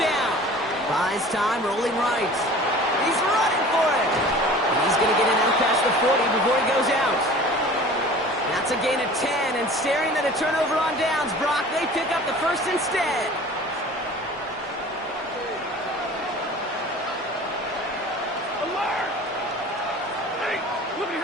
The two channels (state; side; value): normal; both; correlation 0.43